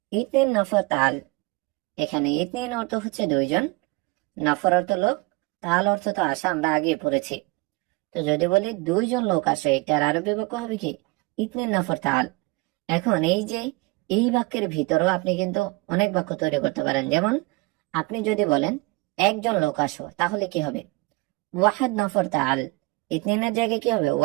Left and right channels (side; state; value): left; quieter; 25.3 dB